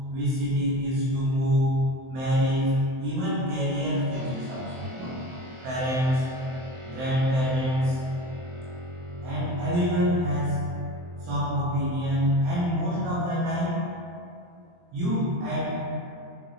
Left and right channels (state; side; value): late; left; 23 ms